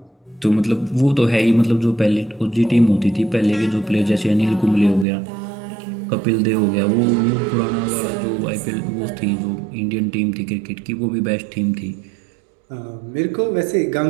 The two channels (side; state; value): left; drops out; at 5.1 s